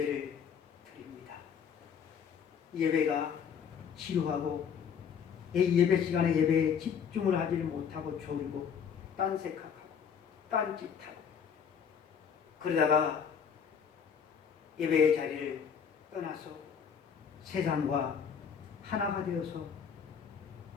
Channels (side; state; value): right; quieter; 7.2 dB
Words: 드립니다. 예배가 지루하고 예배 시간에 예배에 집중을 하지 못하고 졸고 딴색하고 딴짓하고 그러다가 예배의 자리를 떠나서 세상과 하나가 되어서